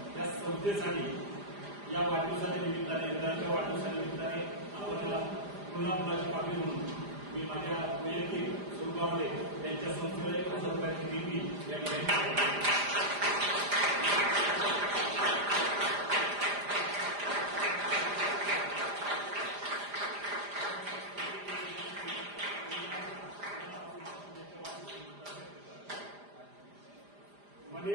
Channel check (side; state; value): left; late; 4.9 ms